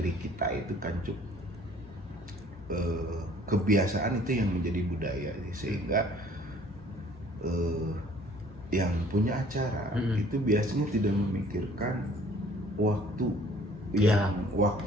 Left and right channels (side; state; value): both; normal; correlation 0.55